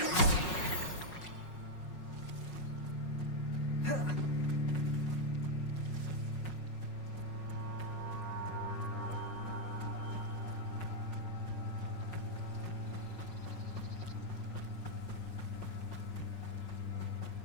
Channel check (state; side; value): late; right; 5.5 ms